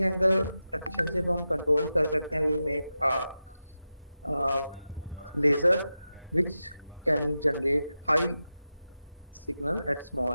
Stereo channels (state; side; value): inverted; both; correlation -0.92